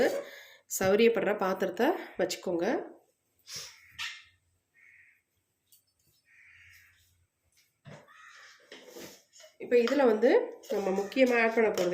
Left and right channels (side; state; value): both; identical; correlation 1.00